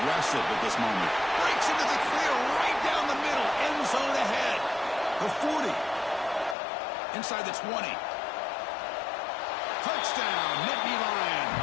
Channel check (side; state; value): right; drops out; at 6.6 s